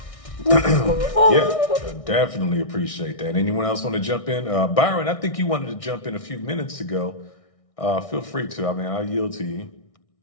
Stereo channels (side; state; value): right; late; 1.6 ms